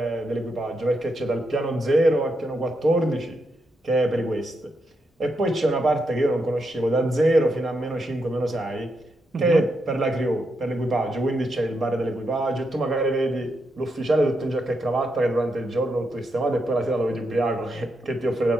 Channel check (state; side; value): normal; both; correlation 0.83